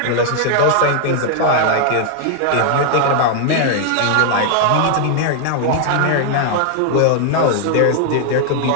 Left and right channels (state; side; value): different; both; correlation 0.00